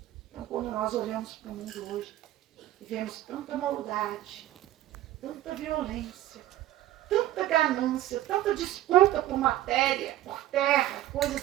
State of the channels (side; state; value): left; quieter; 14.2 dB